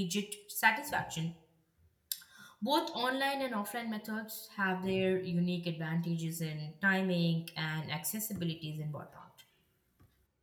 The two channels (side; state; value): both; identical; correlation 1.00